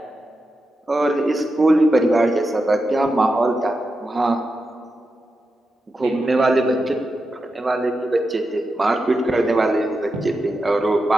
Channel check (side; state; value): both; normal; correlation 0.89